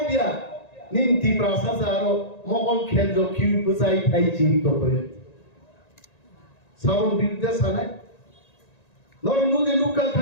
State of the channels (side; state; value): right; late; 1.9 ms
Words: ইয়া নিন্তি প্রাসাজারো মগল খেলজ কিউ বুঝাই পাই জীবিত হয়ে সাবন বিরুদ্ধে সানাই নরমুদে লুকা